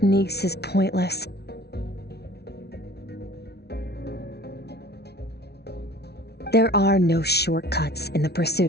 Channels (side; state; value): right; late; 0.48 ms